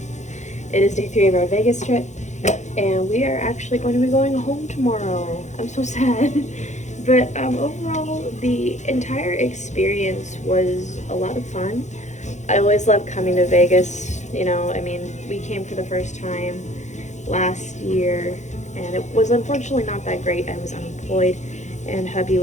It is day 3 of our Vegas trip. And we are actually going to be going home tomorrow. I'm so sad. But overall, the entire experience was a lot of fun. I always love coming to Vegas. We came for the first time last year. And it was unfortunately not that great. I was unemployed, and hubby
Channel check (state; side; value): late; right; 0.34 ms